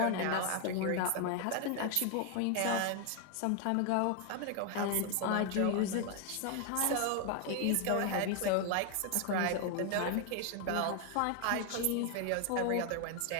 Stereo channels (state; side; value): different; both; correlation 0.01